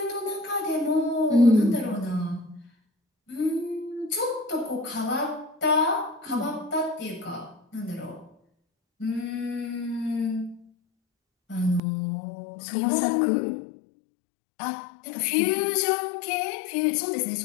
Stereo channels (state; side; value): drops out; right; at 11.8 s